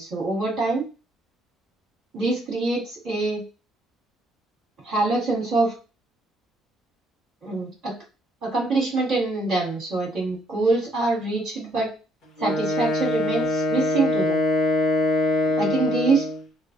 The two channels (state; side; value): normal; both; correlation 0.68